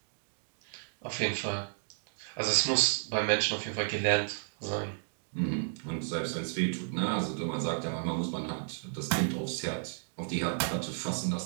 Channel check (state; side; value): silent; left; digital silence